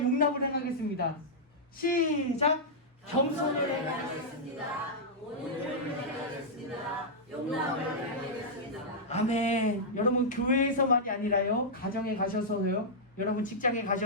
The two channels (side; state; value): both; normal; correlation -0.09